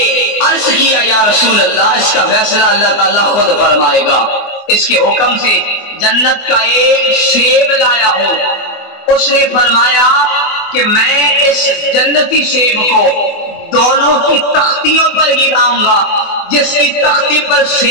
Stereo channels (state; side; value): late; right; 24 ms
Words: عرض کیا یا رسول اللہ اس کا فیصلہ اللہ تعالیٰ خود فرمائے گا۔ اس کے حکم سے جنت کا ایک سیب لایا ہوں، اس نے فرمایا کہ میں اس جنتی سیب کو دونوں کی تختیوں پر گراؤں گا، جس کی تختی پر